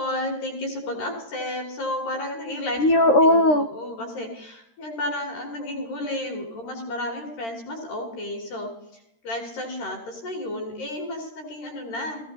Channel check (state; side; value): late; right; 13 ms